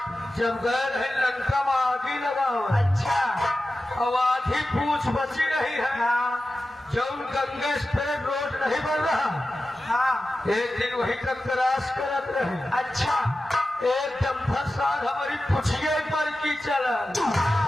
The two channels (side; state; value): both; normal; correlation 0.93